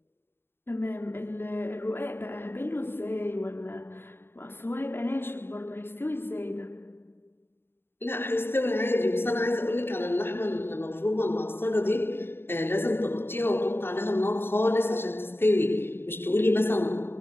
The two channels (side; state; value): right; late; 0.11 ms